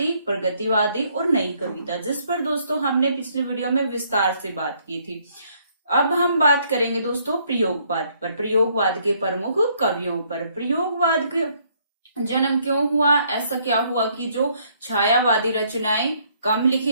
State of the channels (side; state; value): both; inverted; correlation -0.68